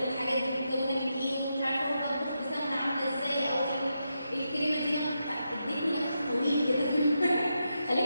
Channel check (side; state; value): both; inverted; correlation -0.85